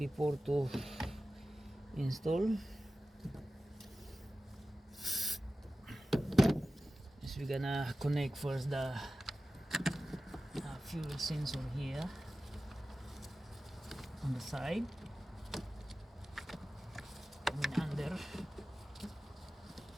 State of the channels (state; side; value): normal; both; correlation 0.95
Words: to install is we're gonna connect first the fuel sensor here on the side, and under